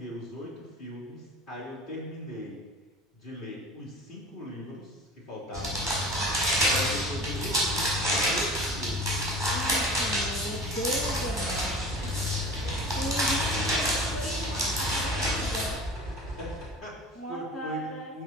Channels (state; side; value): normal; both; correlation 0.38